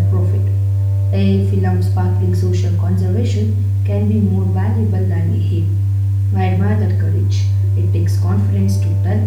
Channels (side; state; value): both; identical; correlation 1.00